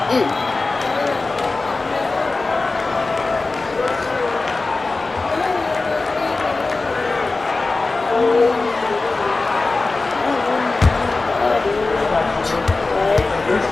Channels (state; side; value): quieter; right; 3.5 dB